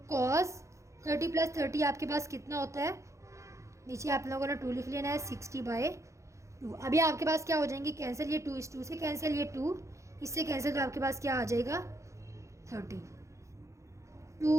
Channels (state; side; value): late; left; 0.15 ms